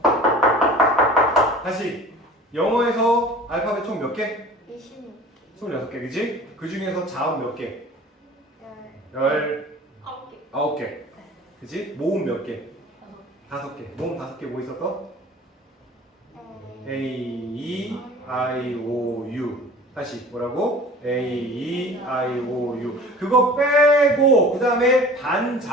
다시. 영어에서 알파벳 총 몇 개? 26개. 26개, 그지? 그 중에서 자음 몇 개? 9개. 19개. 그지? 모음 몇 개? 5개. 모음 5개 뭐 있었어? A, E, I, O, U. 다시 뭐라고? A, E, I, O, U. 그거 빼고 그 다음에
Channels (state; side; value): normal; both; correlation 0.43